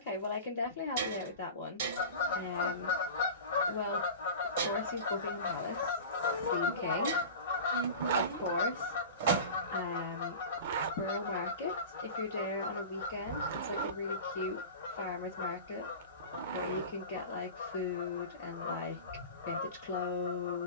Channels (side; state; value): both; inverted; correlation -0.33